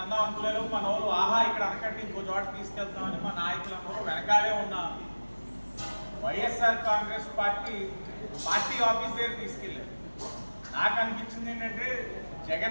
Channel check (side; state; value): both; inverted; correlation -1.00